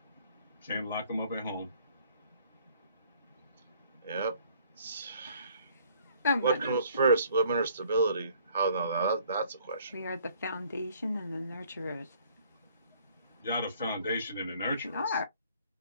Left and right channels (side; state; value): both; inverted; correlation -0.60